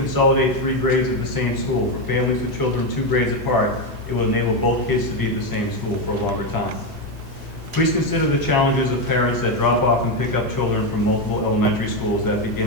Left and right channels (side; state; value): both; normal; correlation 0.09